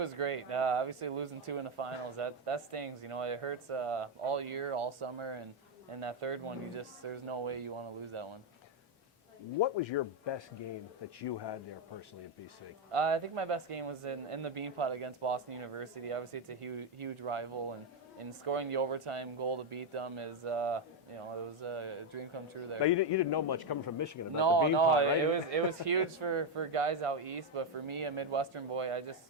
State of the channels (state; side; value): normal; both; correlation 0.05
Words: great. Obviously, losing 2 in the finals, that stings. It hurts all year, all summer, and that third one, there's no way you want to lose that one. What was your best game that you had there personally at BC? I think my best game was in the Beanpot against Boston University. Obviously, it's a huge rival, and scoring the overtime goal to beat them is, it was a dream come true there. Now, you didn't know much coming from Michigan about No, the Beanpot, right? it was huge for guys out east, but for me, a Midwestern boy,